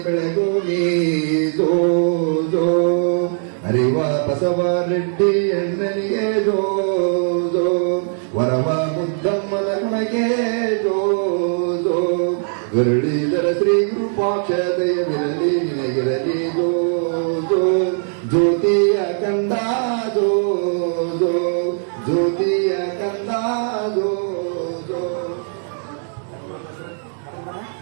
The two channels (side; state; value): left; silent; 61 dB below the other